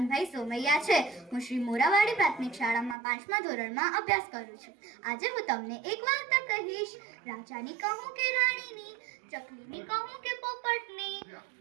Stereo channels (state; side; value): drops out; left; at 3.0 s